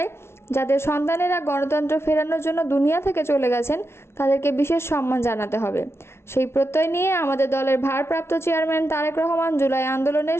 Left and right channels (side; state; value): right; late; 0.12 ms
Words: যাদের সন্তানেরা গণতন্ত্র ফেরানোর জন্য দুনিয়া থেকে চলে গেছেন, তাদেরকে বিশেষ সম্মান জানাতে হবে। সেই প্রত্যয় নিয়ে আমাদের দলের ভারপ্রাপ্ত চেয়ারম্যান তারেক রহমান জুলাই আন্দোলনে